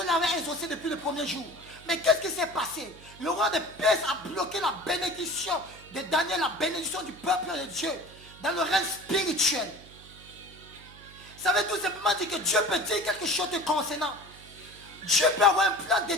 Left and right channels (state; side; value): noise; right; hum, 21 dB below the sound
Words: l'avait exaucé depuis le premier jour. Mais qu'est-ce qui s'est passé? Le roi de Perse a bloqué la bénédiction de Daniel, la bénédiction du peuple de Dieu, dans le règne spirituel. Ça veut tout simplement dire que Dieu peut dire quelque chose te concernant. Dieu peut avoir un plan